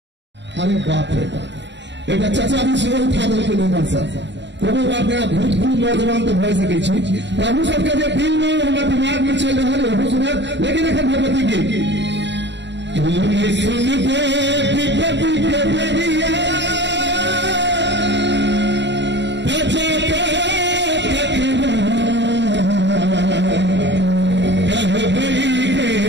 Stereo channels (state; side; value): late; left; 0.52 ms